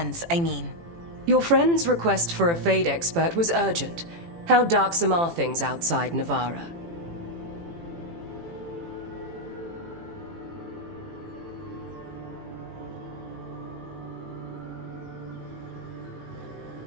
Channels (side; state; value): left; late; 18 ms